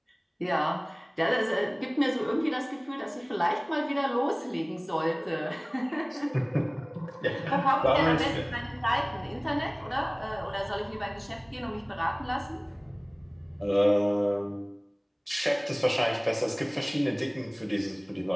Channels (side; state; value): both; identical; correlation 1.00